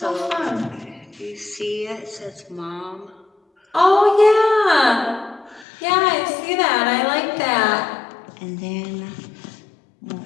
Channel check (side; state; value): right; drops out; at 5.7 s